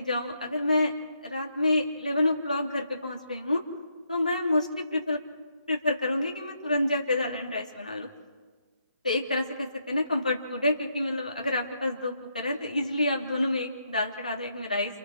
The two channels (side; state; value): both; inverted; correlation -0.77